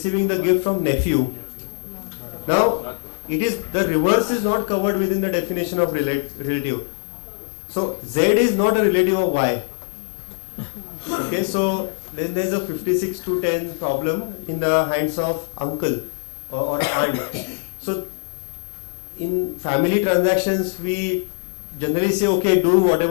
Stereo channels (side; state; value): right; silent; 61 dB below the other